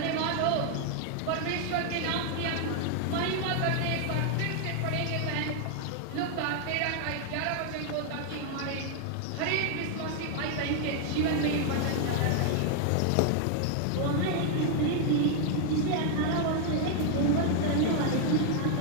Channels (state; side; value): different; both; correlation 0.00